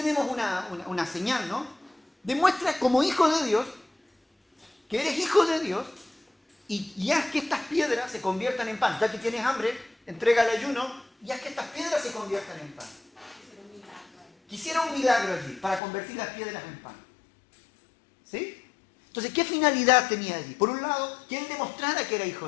una señal, ¿no? Demuestra como hijo de Dios que eres hijo de Dios y haz que estas piedras se conviertan en pan. Ya que tienes hambre, entrega el ayuno y haz que estas piedras se conviertan en pan. Quisiera un milagro allí para convertir las piedras en pan. ¿Sí? Entonces, ¿qué finalidad tenía allí? Por un lado, que él demostrara que era hijo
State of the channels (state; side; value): drops out; right; at 15.8 s